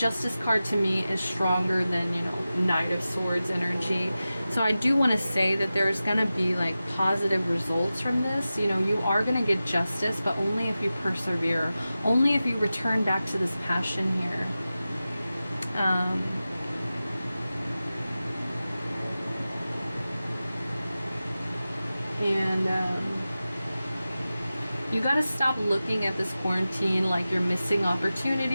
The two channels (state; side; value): inverted; both; correlation -0.95